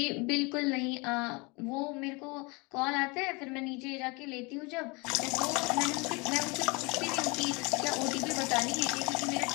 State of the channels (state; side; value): quieter; right; 28.0 dB